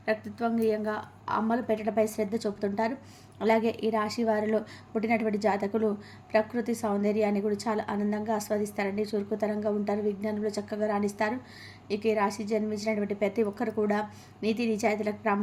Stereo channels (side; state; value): both; identical; correlation 1.00